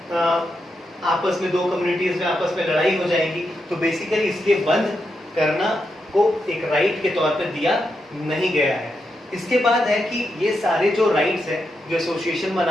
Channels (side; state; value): both; normal; correlation 0.85